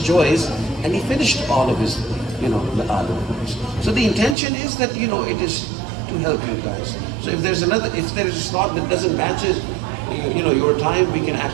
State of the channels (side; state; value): left; drops out; at 4.4 s